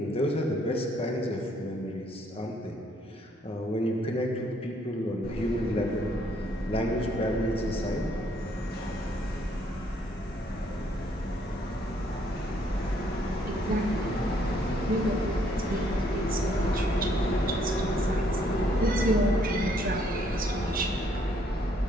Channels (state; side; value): normal; both; correlation 0.68